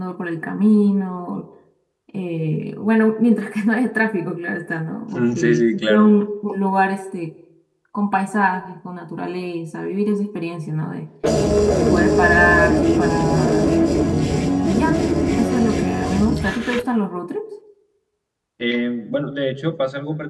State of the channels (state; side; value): identical; both; correlation 1.00